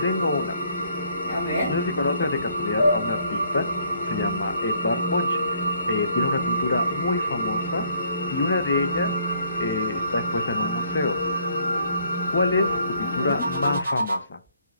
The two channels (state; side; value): inverted; both; correlation -0.65